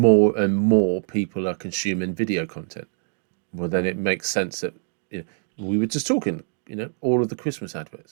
and more people are consuming video content. Well, then it makes sense that we were just talking, all of the Christmas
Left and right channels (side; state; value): left; silent; digital silence